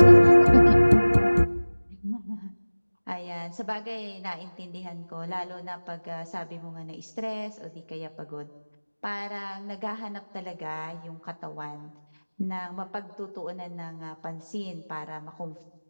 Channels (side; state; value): both; inverted; correlation -1.00